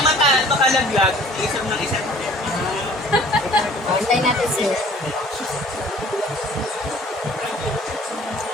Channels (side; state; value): both; normal; correlation 0.51